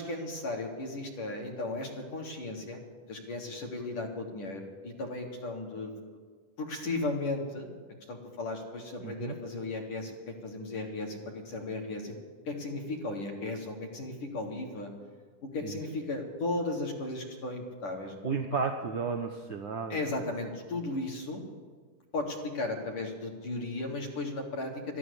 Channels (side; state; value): right; late; 10 ms